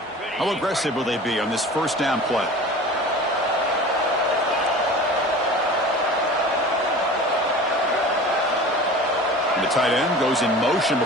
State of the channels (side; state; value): both; normal; correlation 0.39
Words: How aggressive will they be on this first down play? And the tight end goes in motion